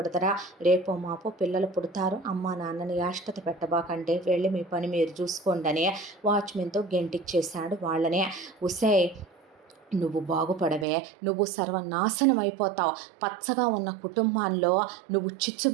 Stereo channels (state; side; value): drops out; left; at 10.9 s